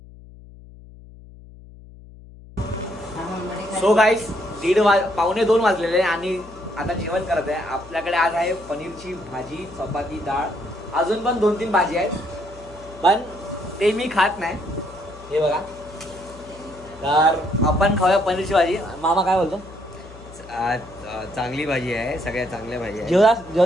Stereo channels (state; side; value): noise; left; hum, 19 dB below the sound